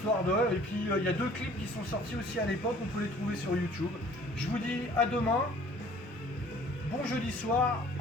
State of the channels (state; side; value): normal; both; correlation 0.53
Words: de... Et puis, il y a 2 clips qui sont sortis aussi à l'époque, on peut les trouver sur YouTube. Je vous dis à demain, bon jeudi soir,